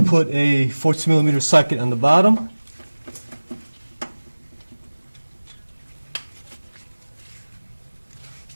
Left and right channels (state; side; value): inverted; both; correlation -1.00